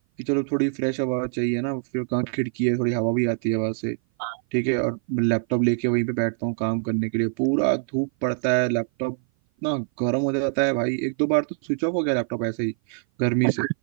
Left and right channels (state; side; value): silent; left; 57 dB below the other